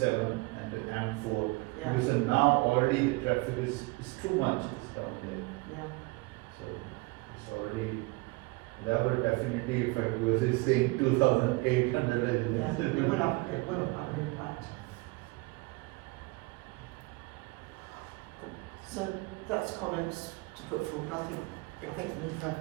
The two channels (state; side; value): quieter; left; 24.9 dB